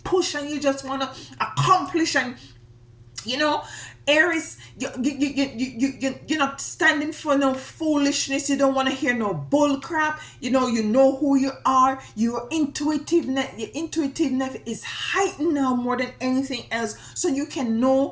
push and you just want to accomplish, and Aries, you're not standing for no foolishness. You don't want to hear no bull crap. You know who you are. Your intuitiveness is heightened now more than anything else. So you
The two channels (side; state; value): both; identical; correlation 1.00